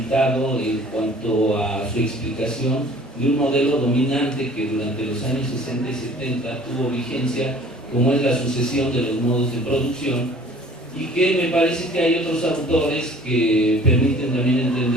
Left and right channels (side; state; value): both; normal; correlation 0.50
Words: en cuanto a su explicación de un modelo dominante que durante los años 60 y 70 tuvo vigencia, como es la sucesión de los modos de producción, y que me parece que hay otros autores que permiten también